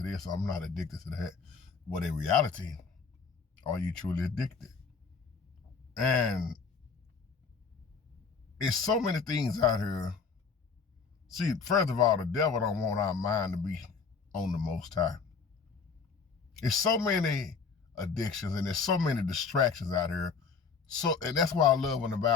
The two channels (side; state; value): right; quieter; 5.3 dB